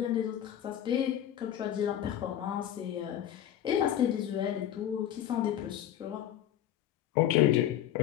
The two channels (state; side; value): quieter; right; 11.1 dB